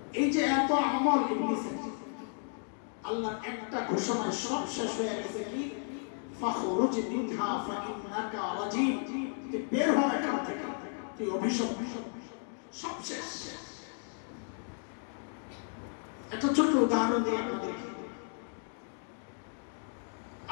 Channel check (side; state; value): right; silent; 55 dB below the other